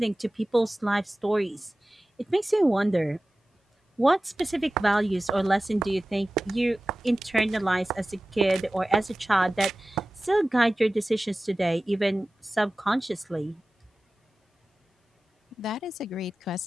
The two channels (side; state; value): both; normal; correlation 0.96